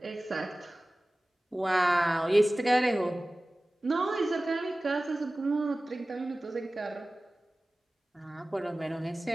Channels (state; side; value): normal; both; correlation 0.97